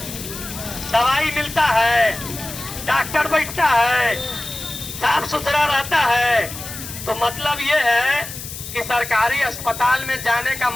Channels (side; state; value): left; noise; hiss, 10 dB below the sound